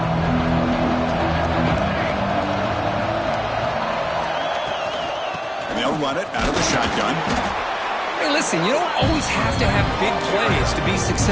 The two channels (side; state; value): both; identical; correlation 1.00